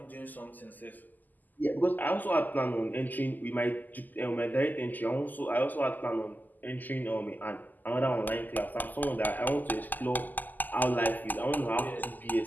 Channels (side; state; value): right; late; 0.085 ms